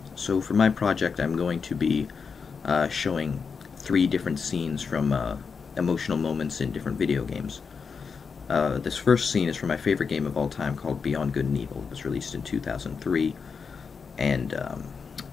So for my project, I'm going to be showing 3 different scenes from emotional moments in different video games. This first scene is from my favorite game of all time called Beyond Good and Evil. It was released in 2003, and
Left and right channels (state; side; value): quieter; right; 5.6 dB